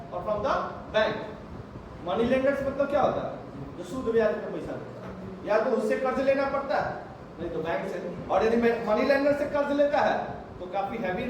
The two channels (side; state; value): both; identical; correlation 1.00